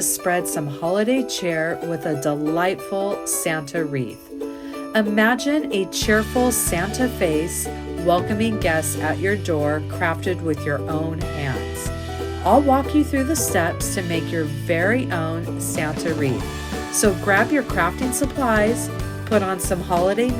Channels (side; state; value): both; identical; correlation 1.00